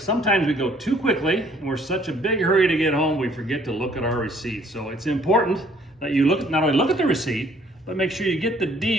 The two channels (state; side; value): normal; both; correlation 0.61